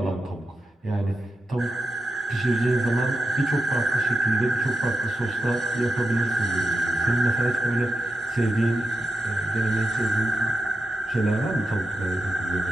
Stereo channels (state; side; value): normal; both; correlation 0.89